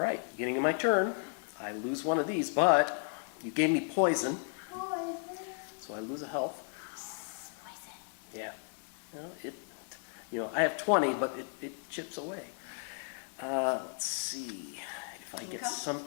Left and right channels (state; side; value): silent; right; 55 dB below the other